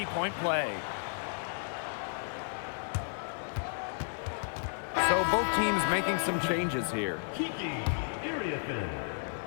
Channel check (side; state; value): right; silent; digital silence